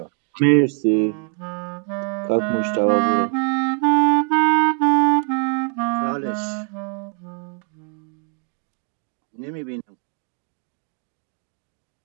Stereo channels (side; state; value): left; quieter; 37.3 dB